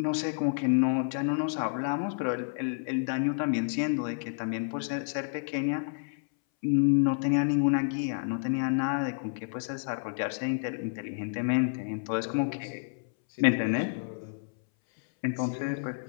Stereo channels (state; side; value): silent; right; 58 dB below the other